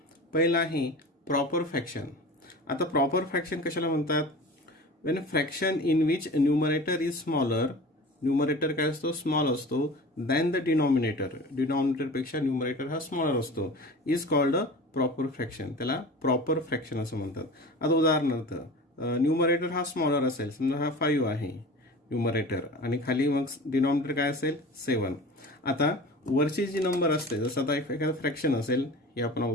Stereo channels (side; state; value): both; normal; correlation 0.37